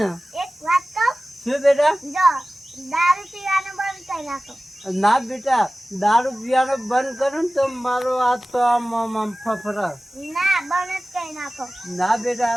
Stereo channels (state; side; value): normal; both; correlation 0.97